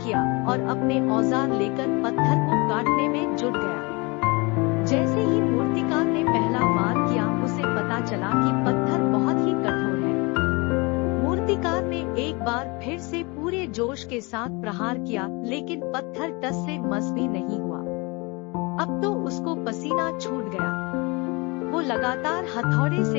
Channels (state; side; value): quieter; right; 27.6 dB